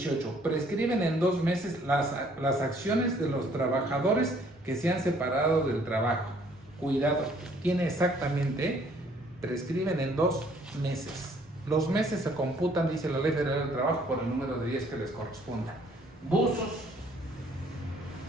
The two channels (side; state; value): both; normal; correlation 0.61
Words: Prescriben en 2 meses las acciones de los trabajadores que se han separado del trabajo. Cuidado, tiene exactamente, prescriben en 2 meses. Los meses se computan, dice la Ley Federal del Trabajo, por el número de días que les corresponda. Buzos,